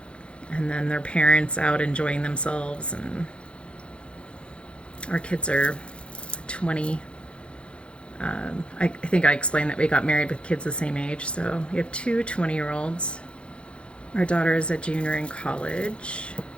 and then their parents out enjoying themselves. And our kids are 20. I think I explained that we got married with kids the same age. So we have two 20-year-olds. Our daughter is a junior in college.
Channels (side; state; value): right; late; 0.058 ms